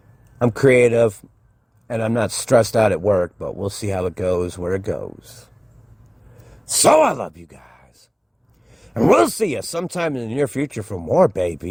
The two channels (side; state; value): both; identical; correlation 1.00